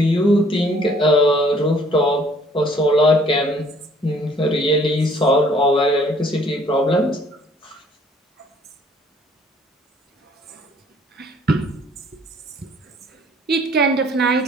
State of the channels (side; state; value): both; normal; correlation 0.59